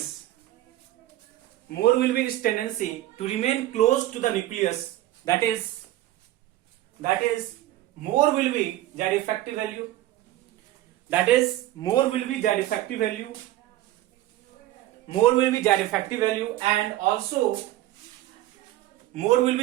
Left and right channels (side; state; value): left; quieter; 15.1 dB